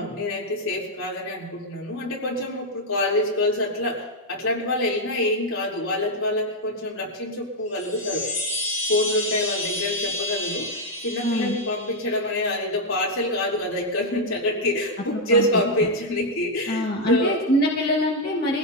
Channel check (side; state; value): both; normal; correlation 0.00